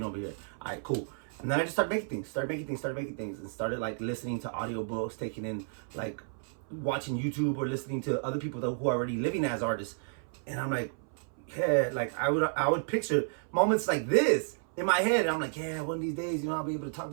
over here. All right, cool. And then I just started making things, and started like listening to audiobooks, taking in like watching YouTube or listening to other people who are already living as artists. And I'm like, yeah, like I would picture moments like this in my head, I'm like, yeah, one of these days, you know, I'll be able to talk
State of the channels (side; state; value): left; silent; 57 dB below the other